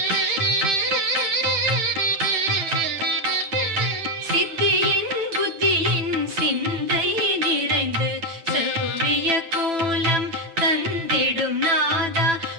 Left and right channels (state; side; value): late; left; 9.1 ms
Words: சித்தியின் புத்தியின் சிந்தை நிறைந்து செவ்விய கோலம் தந்திடும் நாதா